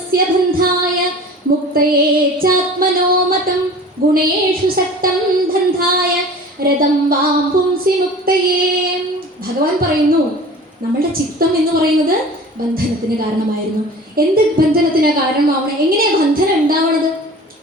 ബന്ധായ മുക്തയേ ചാത്മനോ മതം ഗുണേഷു സക്തം ബന്ധായ രഥം വാം പുംസി മുക്തയേ. ഭഗവാൻ പറയുന്നു, നമ്മളുടെ ചിത്തം എന്ന് പറയുന്നത് ബന്ധനത്തിന് കാരണമായിരുന്നു. എന്ത് ബന്ധനത്തിന് കാരണമാവണം? എങ്ങനെയാ ബന്ധനം ഉണ്ടാവണത്?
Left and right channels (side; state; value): both; normal; correlation 0.41